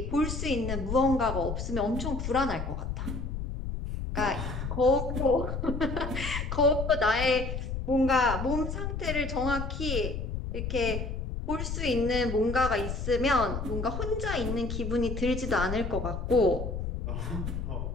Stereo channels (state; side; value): noise; left; rumble, 4 dB below the sound